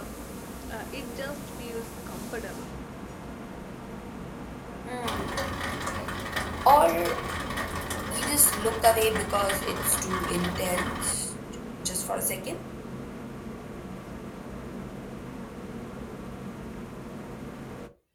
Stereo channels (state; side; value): identical; both; correlation 1.00